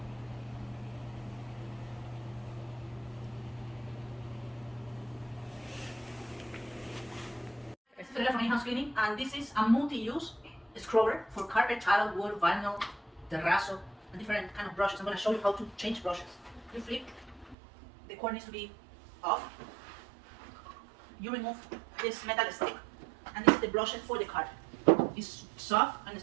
This is the from in-house cleaning, and this is a multi-use scrubber for carpet, tile, wood, vinyl, terrazzo, and different kind of brushes. I'm going to show you how to change brushes. You flip, the cord needs to be off. You remove this metal stick, and this is the brushes for the carpet. It's soft, and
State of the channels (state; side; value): drops out; left; at 17.6 s